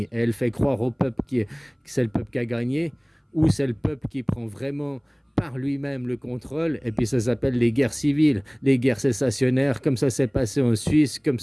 et elle fait croire au peuple que c'est le peuple qui a gagné, ou c'est le peuple qui prend vraiment par lui-même le contrôle, et puis ça s'appelle les guerres civiles, les guerres sécessionnaires, comme ça s'est passé en Suisse, comme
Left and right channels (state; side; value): identical; both; correlation 1.00